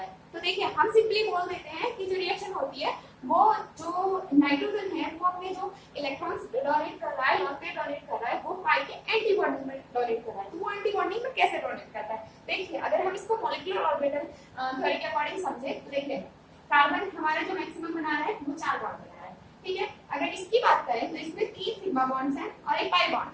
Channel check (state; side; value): identical; both; correlation 1.00